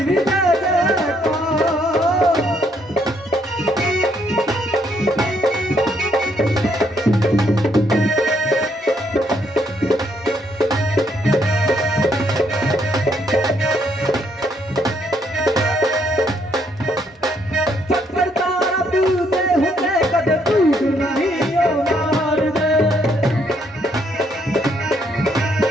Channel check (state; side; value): normal; both; correlation 0.71